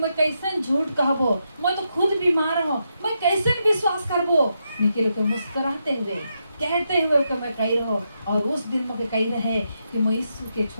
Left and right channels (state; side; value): inverted; both; correlation -0.83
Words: कैसे झूठ कहबो मैं तो खुद बीमार हूँ मैं कैसे विश्वास करबो लेकिन को मुस्कुराते हुए कहते हुए कि मैं कही रहो और उस दिन मुझे कही रहे कि मैं यीशु के